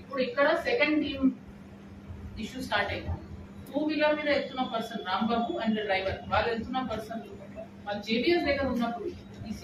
ఇప్పుడు ఇక్కడ సెకండ్ టీమ్ ఇష్యూ స్టార్ట్ అయింది. 2-wheeler మీద వెళ్తున్న పర్సన్ రాంబాబు అండ్ డ్రైవర్ వాళ్ళు వెళ్తున్న పర్సన్ వాళ్ళు జేబీఎస్ దగ్గర ఉన్నప్పుడు ఈ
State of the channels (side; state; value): both; identical; correlation 1.00